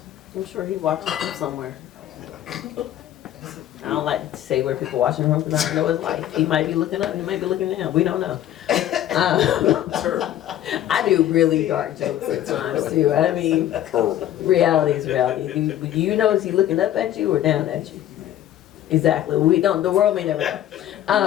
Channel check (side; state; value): right; quieter; 12.1 dB